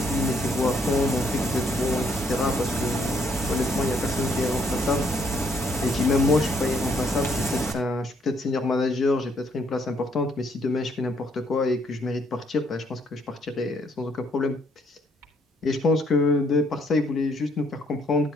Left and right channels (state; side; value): normal; both; correlation 0.69